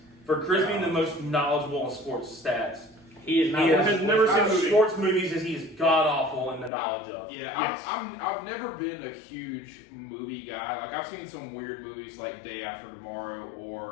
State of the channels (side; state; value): right; drops out; at 6.7 s